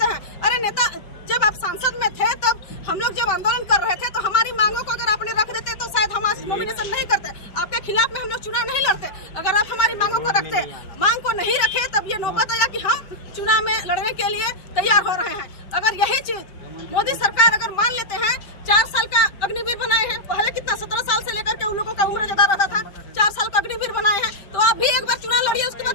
हैं। अरे नेता, जब आप सांसद में थे तब हम लोग जब आंदोलन कर रहे थे तो हमारी मांगों को अगर आपने रख देते तो शायद हम आज नॉमिनेशन नहीं करते, आपके खिलाफ में हम लोग चुनाव नहीं लड़ते। अगर आप हमारी मांगों को रखते, मांग को नहीं रखे, तब ये नौबत आया कि हम चुनाव में लड़ने के लिए तैयार हो रहे हैं। अगर यही चीज मोदी सरकार अगर मान लेते हैं, 4 साल का अग्निवीर बनाए हैं, पहले कितना 17 साल से लेकर के उन लोगों का उम्र ज्यादा रहता था, 4 साल का अग्निवीर बनाए हैं, तो आप भी एक बार चुनाव लड़िए, उसके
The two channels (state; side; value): late; right; 5.2 ms